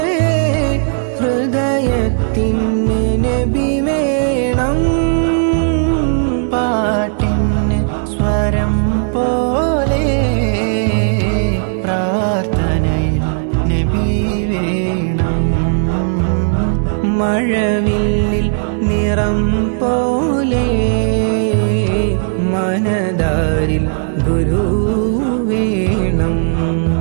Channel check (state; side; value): silent; left; digital silence